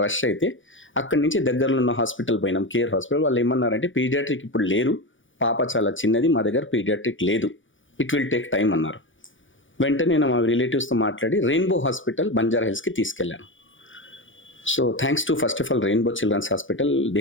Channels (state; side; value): late; right; 0.56 ms